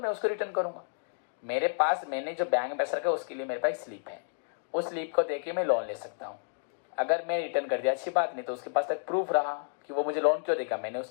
उसको रिटर्न करूंगा। मेरे पास मैंने जो बैंक में पैसा रखा उसके लिए मेरे पास स्लिप है, उस स्लिप को देके मैं लोन ले सकता हूँ। अगर मैं रिटर्न कर दिया अच्छी बात, नहीं तो उसके पास तक प्रूफ रहा कि वो मुझे लोन क्यों देगा, मैंने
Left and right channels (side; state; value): right; silent; digital silence